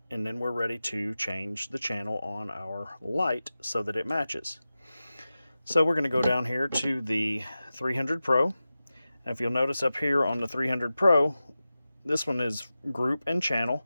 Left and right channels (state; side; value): inverted; both; correlation -0.94